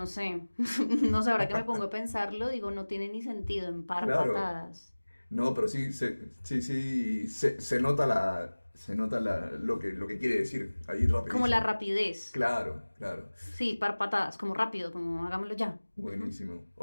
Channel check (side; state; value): both; inverted; correlation -1.00